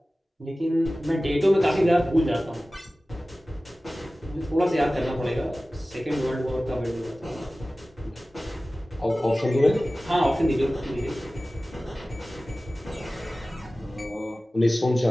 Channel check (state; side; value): normal; both; correlation 0.97